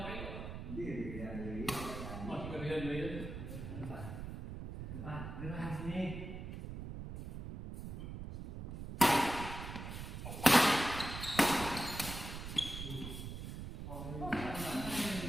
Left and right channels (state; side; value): noise; right; rumble, 7 dB below the sound